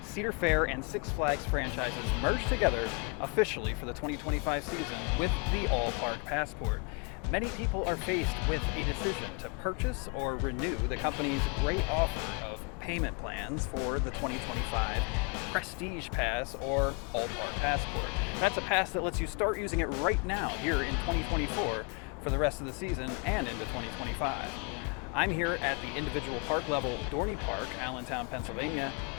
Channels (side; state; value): right; quieter; 31.3 dB